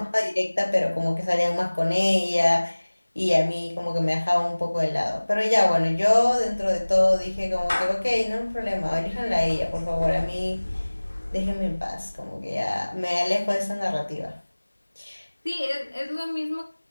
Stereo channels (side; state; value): both; inverted; correlation -1.00